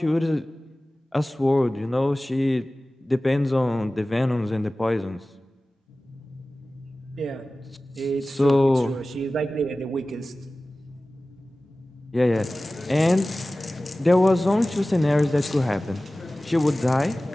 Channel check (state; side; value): normal; both; correlation 0.97